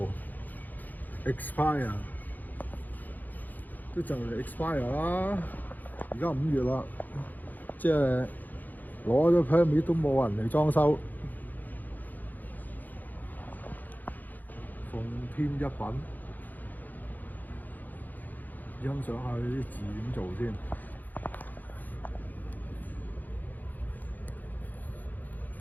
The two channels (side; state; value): right; late; 0.084 ms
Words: expire， 都就嚟 expire 啦。而家5月啦，即係攞咗 permit 都冇人嚟裝修。奉天一品，欣賞下啲字點做先。